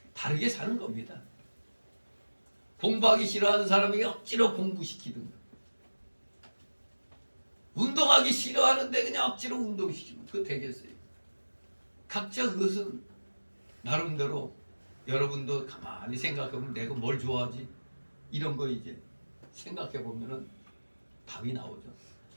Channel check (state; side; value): inverted; both; correlation -1.00